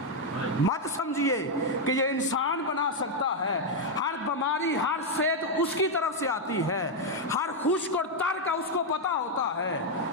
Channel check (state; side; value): normal; both; correlation 0.01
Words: مت سمجھیے کہ یہ انسان بنا سکتا ہے، ہر بیماری، ہر صحت اس کی طرف سے آتی ہے، ہر خشک اور تر کا اس کو پتہ ہوتا ہے،